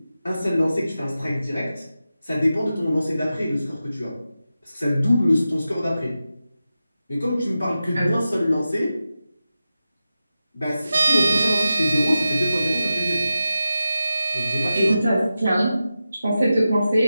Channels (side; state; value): both; inverted; correlation -0.92